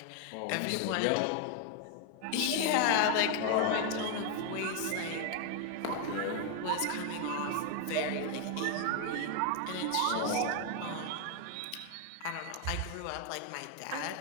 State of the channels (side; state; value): both; different; correlation 0.00